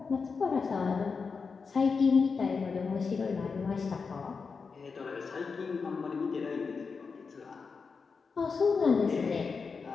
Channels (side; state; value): right; quieter; 5.1 dB